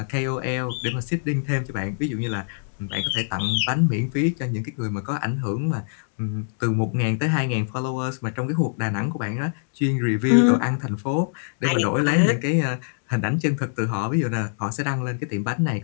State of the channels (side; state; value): right; silent; digital silence